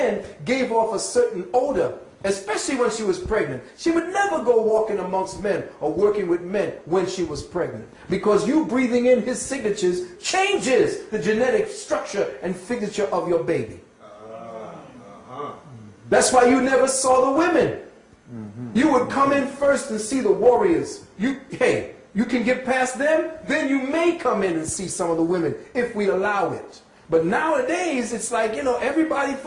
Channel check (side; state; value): both; identical; correlation 1.00